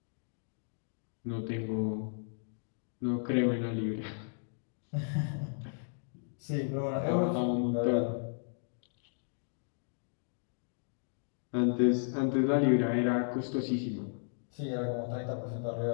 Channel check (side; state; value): right; silent; digital silence